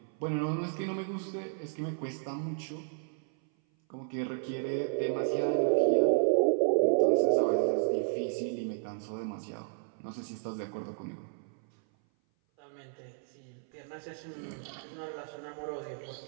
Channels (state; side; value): silent; left; 56 dB below the other